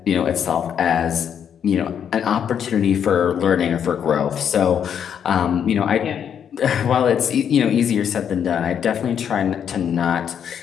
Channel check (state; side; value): quieter; right; 8.4 dB